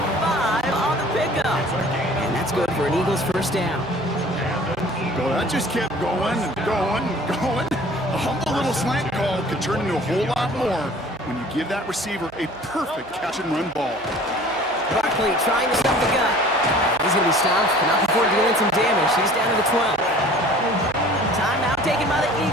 on the pickup. And that's good for an Eagles first down. Well, that just kept going. A humble little slant call could turn into a whole lot more when you give that receiver a perfect catch-and-run ball. Barkley trying to stop the gun. He's going to be stopped, but not before dealing some damage. He's down to the 12. Timeout taken by the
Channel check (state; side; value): noise; right; hum, 26 dB below the sound